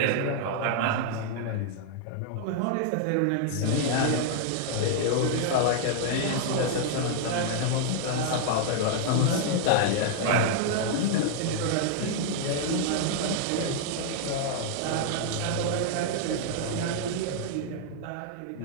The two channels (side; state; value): both; different; correlation -0.01